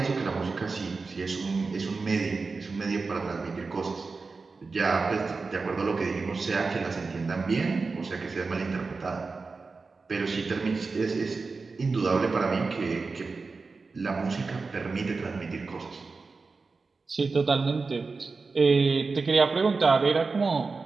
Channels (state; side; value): quieter; left; 4.2 dB